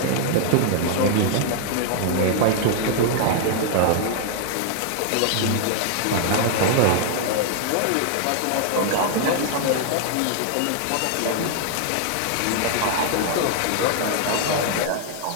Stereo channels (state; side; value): different; both; correlation 0.00